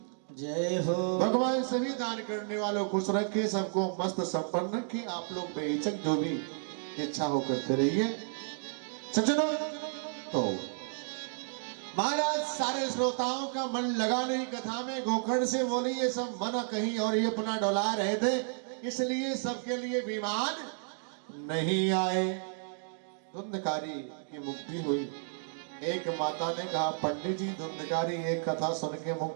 जय हो। भगवान सभी दान करने वालों खुश रखे, सबको मस्त संपन्न रखे। आप लोग बेहिचक जो भी इच्छा हो करते रहिए। सज्जनों, तो महाराज सारे श्रोताओं का मन लगा नहीं कथा में। गोकर्ण से बोली ये सब मन कहीं और ही अपना डोला रहे थे, इसलिए सबके लिए विमान नहीं आए। धुंधकारी की मुक्ति हुई। एक माता ने कहा, पंडित जी धुंधकारी एक कथा सुन के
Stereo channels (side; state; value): left; silent; digital silence